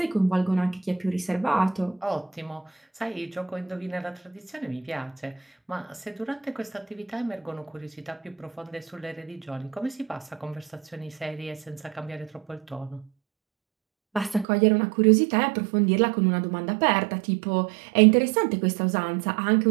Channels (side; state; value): left; drops out; at 14.5 s